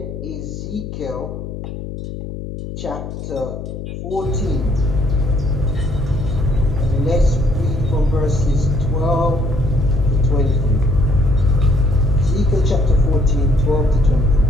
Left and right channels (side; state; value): left; noise; hum, 9 dB below the sound